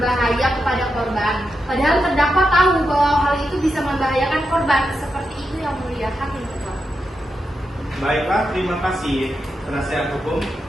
kepada korban, padahal terdakwa tahu bahwa hal itu bisa membahayakan korban. Seperti itu Yang Mulia Hakim Ketua. Baiklah, terima kasih penasehat hukum.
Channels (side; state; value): both; normal; correlation 0.87